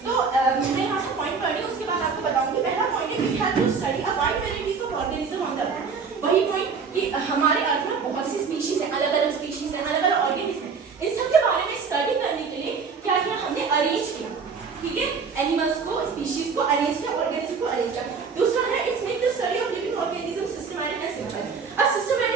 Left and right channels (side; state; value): left; quieter; 5.4 dB